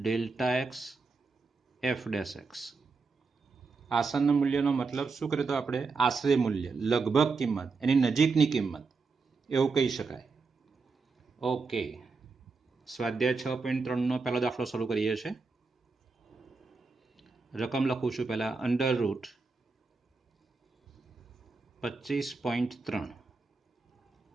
x f dash x। આસન મૂલ્યનો મતલબ શું કરે તો આપણે આશરે મૂલ્ય, લગભગ કિંમત, એની નજીકની કિંમત એવું કહી શકાય। ઓકે, સ્વાધ્યાય 6.3નો પહેલો દાખલો શરૂ કરીએ છીએ। રકમ લખું છું પહેલા, અંડર રૂટ 25.3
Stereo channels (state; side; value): quieter; left; 4.3 dB